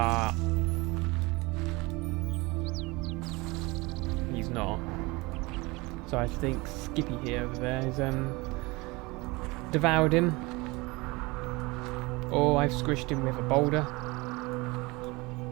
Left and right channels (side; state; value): left; quieter; 24.1 dB